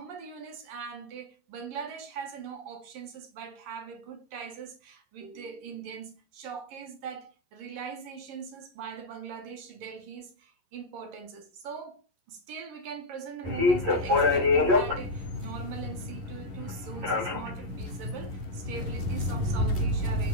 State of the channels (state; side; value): late; left; 11 ms